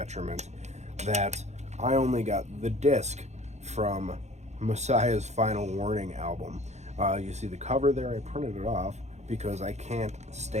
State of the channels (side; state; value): left; late; 0.33 ms